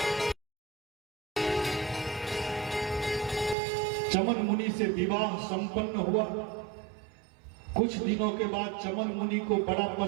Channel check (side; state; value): left; drops out; at 3.6 s